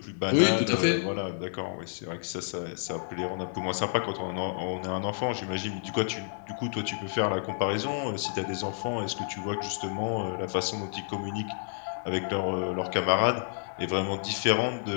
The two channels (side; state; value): right; silent; 58 dB below the other